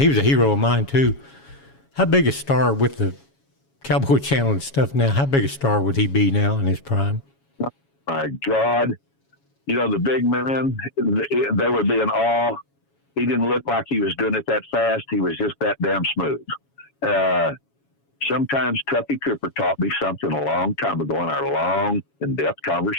was a hero of mine, too. How big a star with the Cowboy Channel and stuff now, how big a star would he be now in his prime? My God. The big man, they would be in awe. He didn't look like he was doing it that fast. He was just that damn smooth. Sometimes Tuffy Cooper taught me something a long time ago in our long, in-depth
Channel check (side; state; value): right; late; 7.2 ms